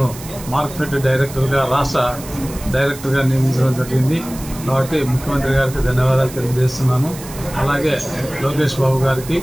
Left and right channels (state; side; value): noise; right; hiss, 15 dB below the sound